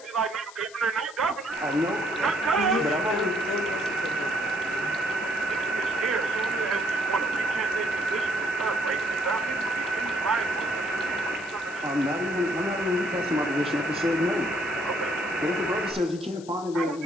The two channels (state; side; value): noise; left; hiss, 20 dB below the sound